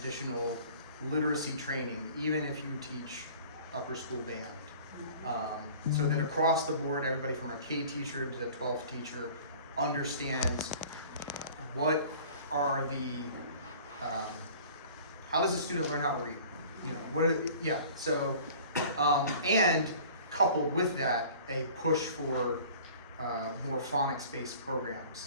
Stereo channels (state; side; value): inverted; both; correlation -0.46